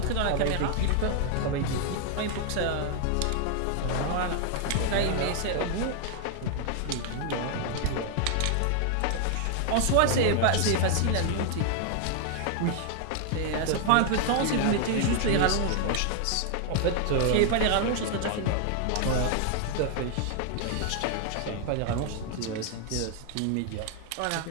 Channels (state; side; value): different; both; correlation 0.00